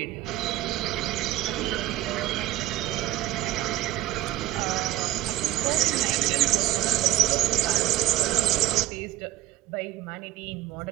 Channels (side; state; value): left; quieter; 14.8 dB